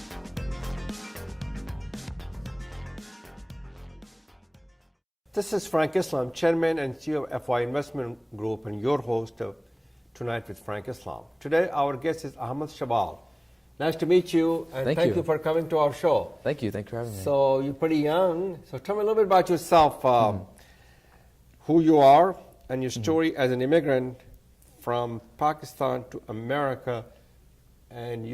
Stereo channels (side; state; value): both; identical; correlation 1.00